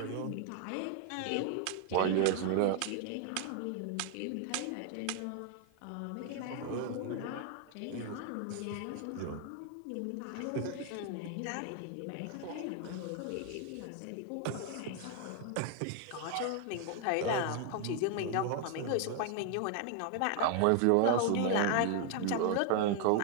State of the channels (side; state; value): both; different; correlation 0.00